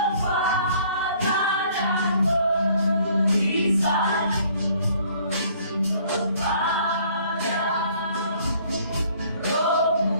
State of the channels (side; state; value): both; inverted; correlation -0.59